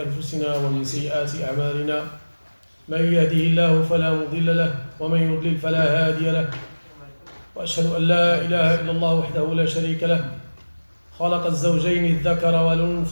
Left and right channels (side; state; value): both; inverted; correlation -1.00